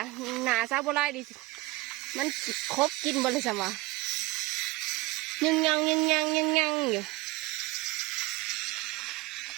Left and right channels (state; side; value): quieter; left; 21.1 dB